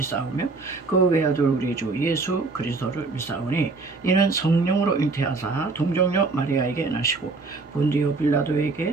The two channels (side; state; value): left; quieter; 3.8 dB